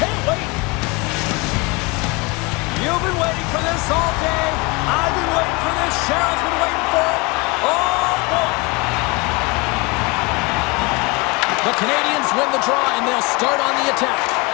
wait. You've been waiting for this all day. I've been waiting for this. Cheryl's been waiting for it. Oh, boy. The Canadians win the draw, and they'll start on the attack.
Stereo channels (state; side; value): quieter; right; 26.2 dB